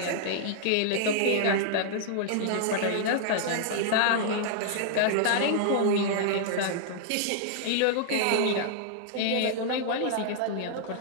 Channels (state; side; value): different; both; correlation -0.01